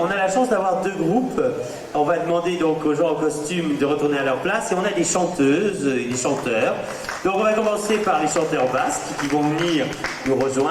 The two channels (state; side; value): identical; both; correlation 1.00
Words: a la chance d'avoir 2 groupes. On va demander donc aux gens en costume de retourner à leur place et on a des chanteuses et des chanteurs. Donc on va commencer par les chanteurs basques qui vont venir nous